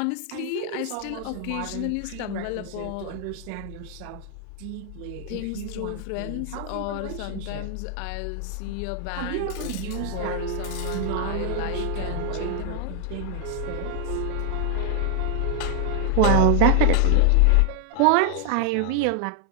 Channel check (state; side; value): different; both; correlation 0.00